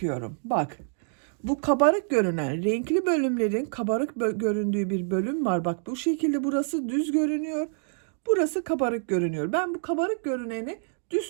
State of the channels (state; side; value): silent; left; 60 dB below the other